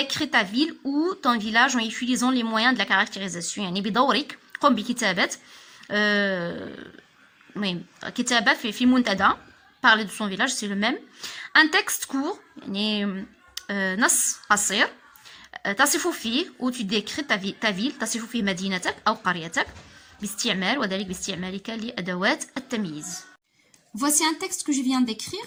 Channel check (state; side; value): identical; both; correlation 1.00